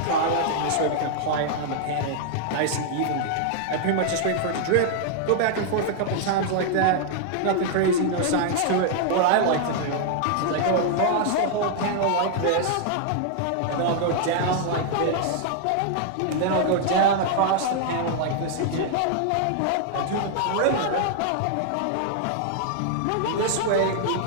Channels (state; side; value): different; both; correlation 0.00